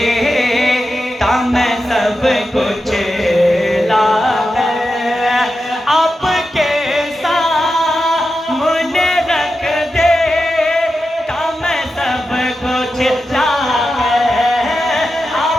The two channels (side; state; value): both; normal; correlation 0.90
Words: ता मैं सब कुछ लाकर। आपके सामने रख दे ता मैं सब कुछ लाकर।